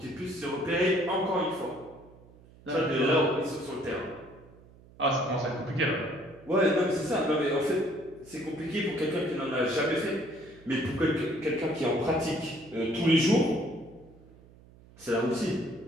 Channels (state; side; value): noise; right; hum, 24 dB below the sound